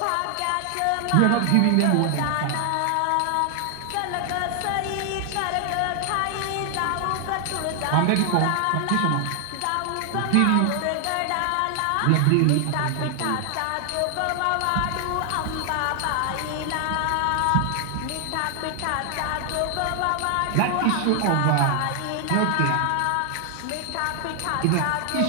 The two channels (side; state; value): both; different; correlation 0.00